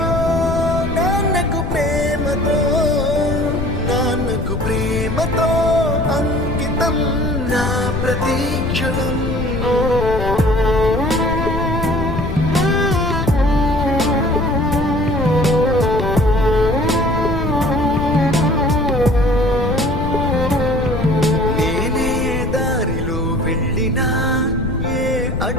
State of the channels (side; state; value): left; noise; rumble, 4 dB below the sound